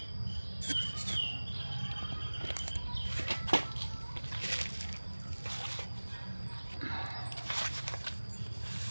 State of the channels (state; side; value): inverted; both; correlation -1.00